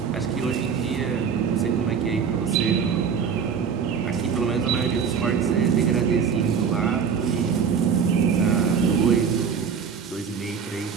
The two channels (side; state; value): left; quieter; 6.6 dB